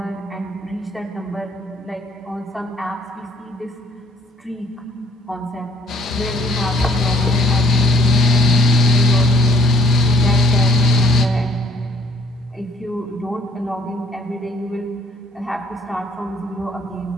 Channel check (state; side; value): normal; both; correlation 0.60